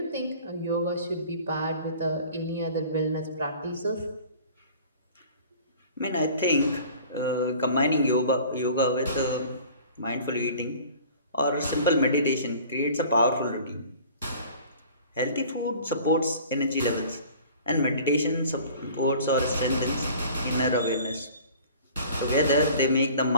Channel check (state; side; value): inverted; both; correlation -0.47